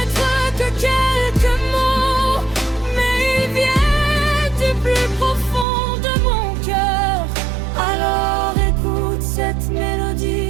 que quelques mots, mais ils viennent du plus profond de mon cœur. Alors écoute cette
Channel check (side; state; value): left; drops out; at 5.7 s